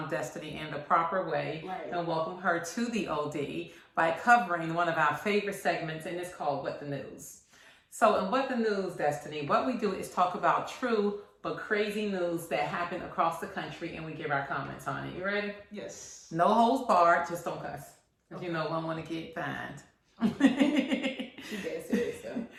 in the proper way and welcome her to the OD by covering one of our favorite segments, and it's called What the News. So in What the News, Destiny, what we do is talk about true but crazy news that happened across the country, and we give our comments on it. You ready? Yes. No holds barred, just don't cuss. Because you know I want to get fined. She's dead serious, so.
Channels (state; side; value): identical; both; correlation 1.00